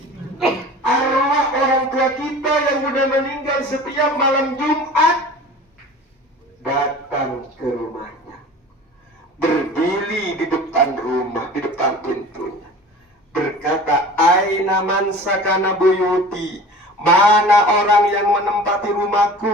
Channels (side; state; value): both; normal; correlation 0.40